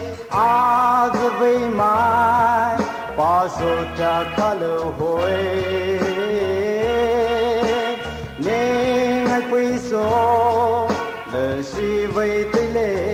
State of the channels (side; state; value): both; identical; correlation 1.00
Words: 阿子为嘛把手家看了会你爱归手了是为对